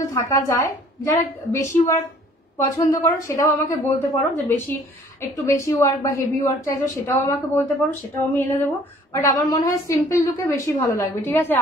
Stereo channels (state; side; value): normal; both; correlation 0.55